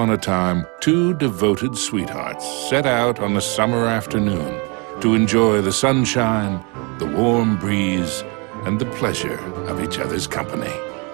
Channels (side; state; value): left; quieter; 31.2 dB